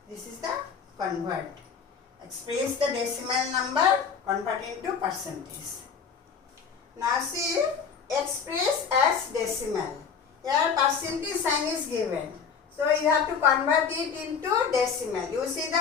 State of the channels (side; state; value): right; quieter; 6.4 dB